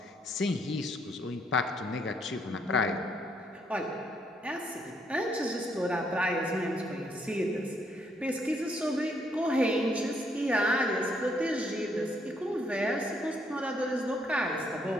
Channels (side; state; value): both; normal; correlation 0.72